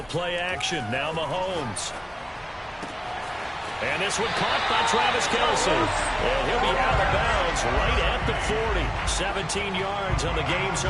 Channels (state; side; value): identical; both; correlation 1.00